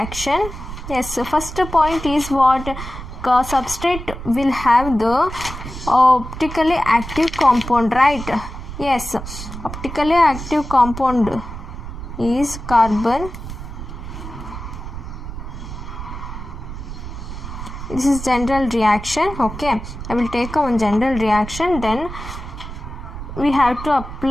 Yes, first point is what? Substrate will have the optically active compound, right? Yes, optically active compound is carbon. This is general reaction. Okay, I will take one general reaction, then we have to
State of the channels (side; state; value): right; noise; rumble, 9 dB below the sound